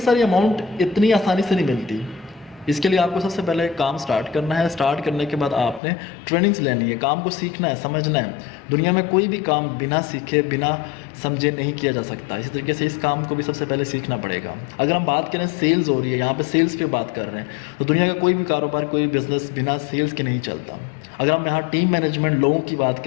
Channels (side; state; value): right; drops out; at 5.8 s